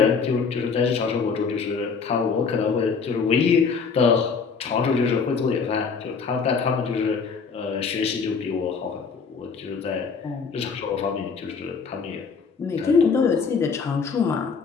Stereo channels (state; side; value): quieter; right; 5.4 dB